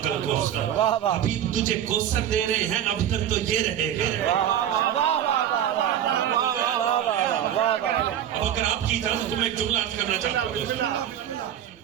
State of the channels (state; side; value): quieter; left; 10.3 dB